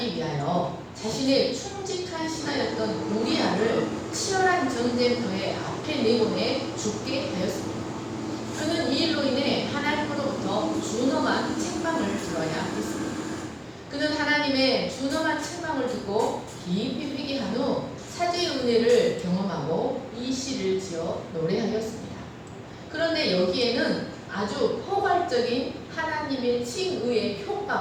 위하여 자신의 충직한 신하였던 우리아를 치열한 전쟁터에 앞에 내보내 죽게 하였습니다. 그는 이 일로 인해 하나님으로부터 준엄한 책망을 들어야 했습니다. 그는 하나님의 준엄한 책망을 듣고 깊이 회개한 후 사죄의 은혜를 경험하고 이 시를 지어 노래하였습니다. 그런데 여기에는 아주 포괄적인 하나님의 칭의의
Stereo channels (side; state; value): both; identical; correlation 1.00